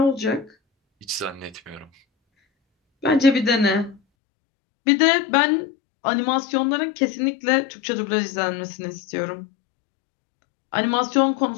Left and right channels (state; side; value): drops out; right; at 4.0 s